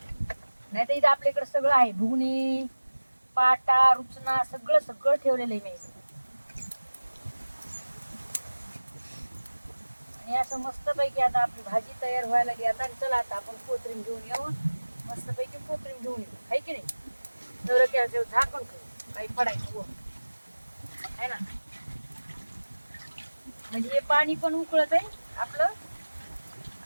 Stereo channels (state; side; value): inverted; both; correlation -1.00